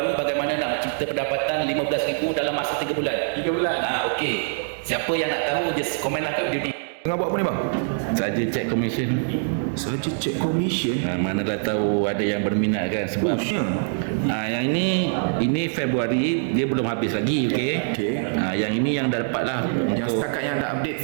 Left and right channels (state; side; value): silent; left; digital silence